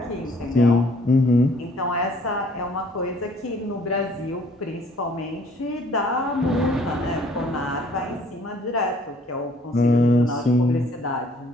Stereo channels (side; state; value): both; normal; correlation 0.59